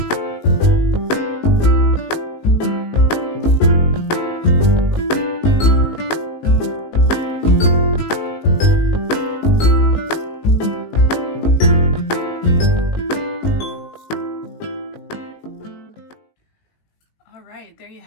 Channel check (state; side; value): late; right; 19 ms